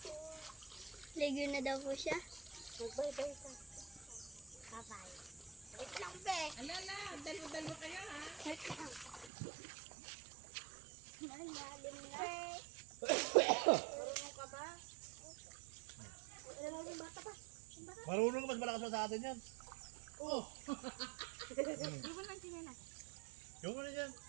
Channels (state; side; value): drops out; left; at 9.3 s